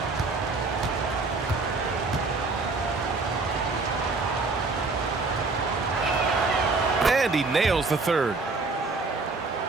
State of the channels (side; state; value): left; quieter; 3.8 dB